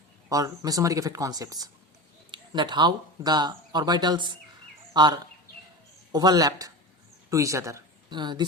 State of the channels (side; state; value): both; normal; correlation 0.27